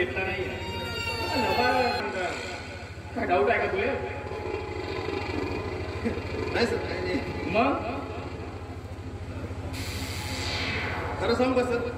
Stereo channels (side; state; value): both; identical; correlation 1.00